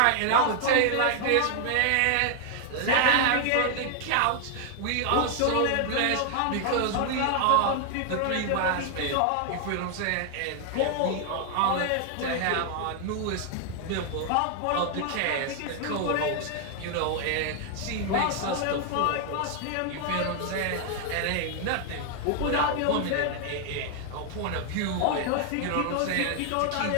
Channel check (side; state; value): both; different; correlation 0.00